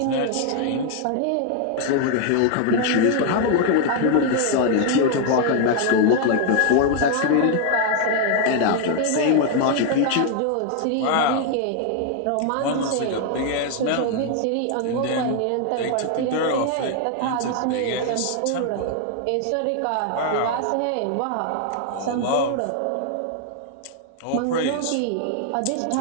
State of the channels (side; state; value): both; different; correlation 0.00